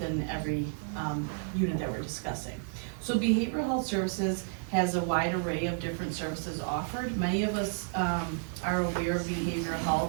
every unit that we're discussing. So behavioral health services has a wide array of different services offered. Many of us are aware of behavioral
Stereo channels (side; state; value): left; silent; digital silence